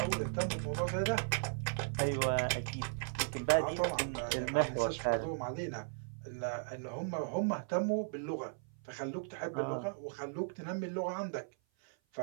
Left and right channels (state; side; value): silent; left; 53 dB below the other